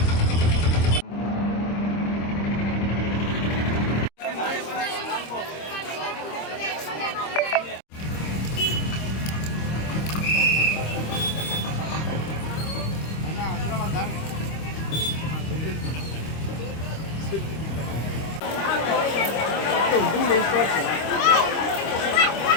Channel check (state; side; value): late; right; 25 ms